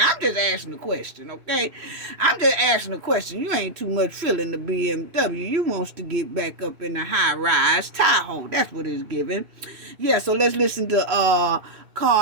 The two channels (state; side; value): late; left; 2.6 ms